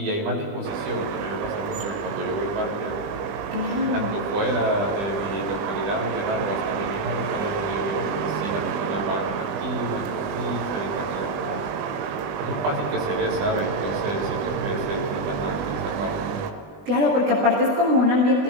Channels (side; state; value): left; late; 20 ms